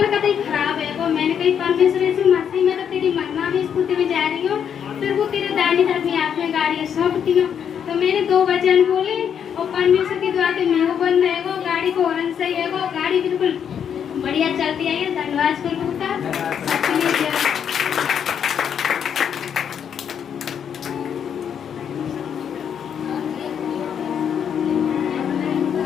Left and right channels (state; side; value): quieter; right; 8.1 dB